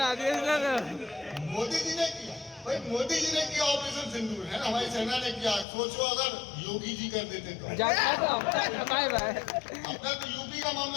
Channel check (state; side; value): drops out; right; at 5.7 s